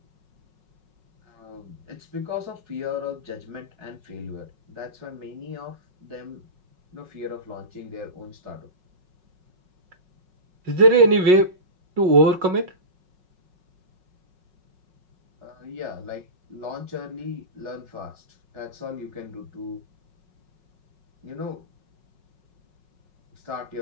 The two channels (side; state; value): left; late; 5.4 ms